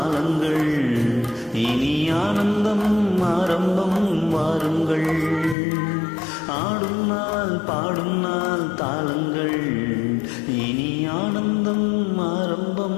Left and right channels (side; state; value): right; drops out; at 5.6 s